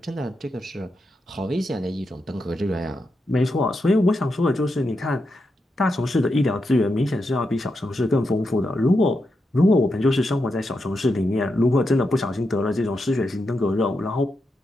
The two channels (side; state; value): both; normal; correlation 0.85